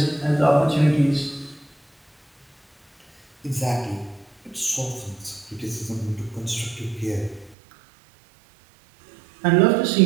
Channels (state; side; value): drops out; left; at 7.6 s